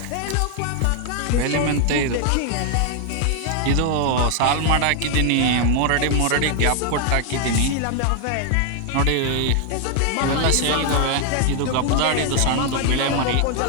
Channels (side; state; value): both; different; correlation 0.00